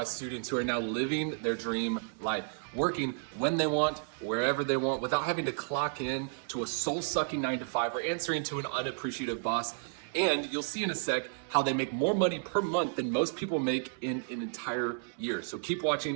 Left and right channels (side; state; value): left; silent; 56 dB below the other